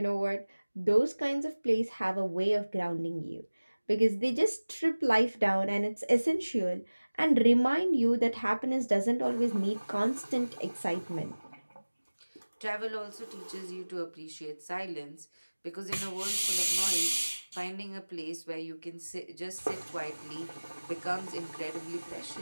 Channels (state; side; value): inverted; both; correlation -1.00